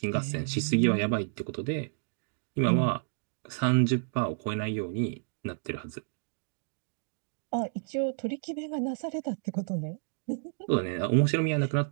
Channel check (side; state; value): left; silent; digital silence